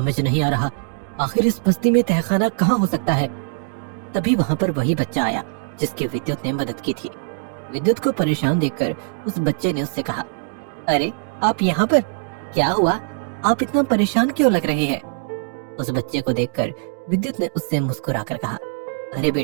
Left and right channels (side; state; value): left; silent; digital silence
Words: नहीं आ रहा, आखिर इस बस्ती में तहखाना कहाँ हो सकता है? तभी वहाँ पर वही बच्चा आया जिसकी विद्युत ने मदद की थी। विद्युत को परेशान देखकर उस बच्चे ने उससे कहा, अरे आप यहाँ पर? क्या हुआ? आप इतना परेशान क्यों लग रहे हैं? उस बच्चे को देखकर विद्युत ने उससे मुस्कुराकर कहा, अरे